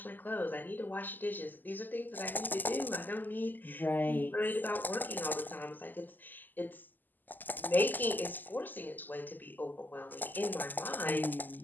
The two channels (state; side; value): late; right; 0.087 ms